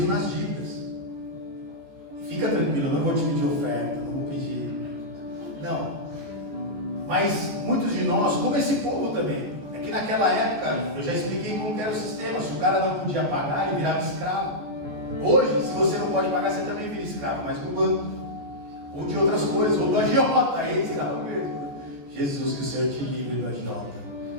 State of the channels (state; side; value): late; left; 14 ms